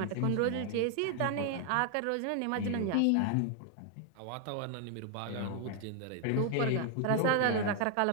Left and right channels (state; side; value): different; both; correlation 0.00